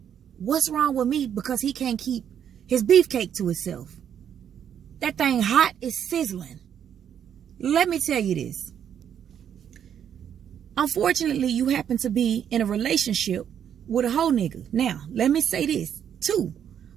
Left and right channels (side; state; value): left; quieter; 8.9 dB